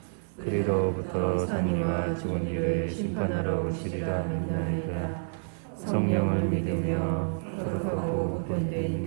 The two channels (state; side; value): silent; left; 58 dB below the other